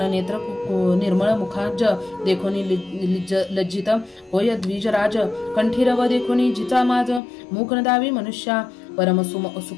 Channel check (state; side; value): drops out; right; at 7.2 s